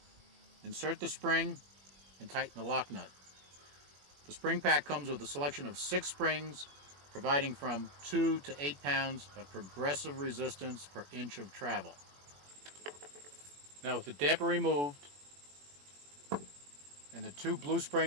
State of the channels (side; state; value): left; late; 21 ms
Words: insert the spring, and tighten the lock nut. The spring pack comes with a selection of 6 springs, providing from 2 to 8 pounds of progressive resistance per inch of travel. Now with the damper removed and the 2 blue